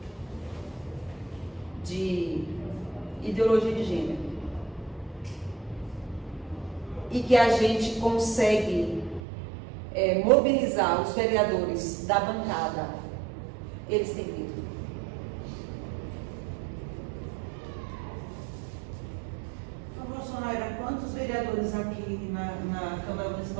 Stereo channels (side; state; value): left; drops out; at 9.2 s